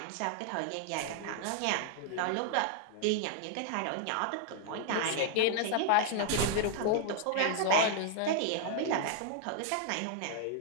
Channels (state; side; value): different; both; correlation 0.00